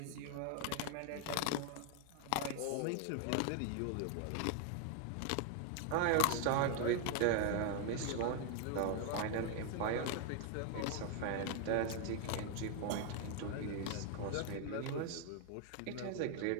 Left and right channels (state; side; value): different; both; correlation 0.00